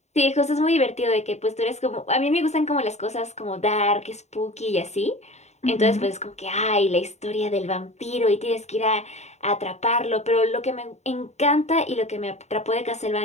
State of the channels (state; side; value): late; right; 0.32 ms